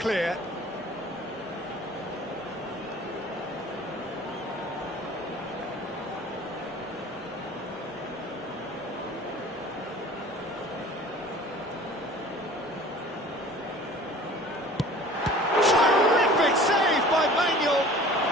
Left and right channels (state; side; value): normal; both; correlation 0.45